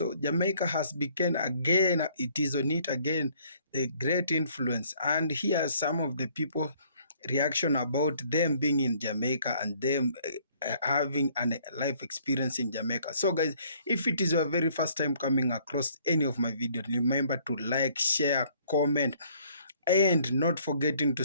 Jamaica has become again, it is on it again, the great influence. And here are some of the people reaction about them being in Jamaica and them having a life experience in Jamaica. So, guys, if it is your very first time coming across any of my videos, remember to like, share, comment, and not forgetting to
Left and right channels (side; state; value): both; inverted; correlation -0.61